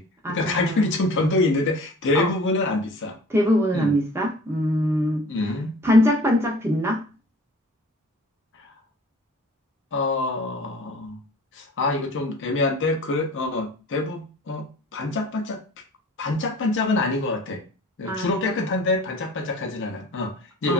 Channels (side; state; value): both; normal; correlation 0.46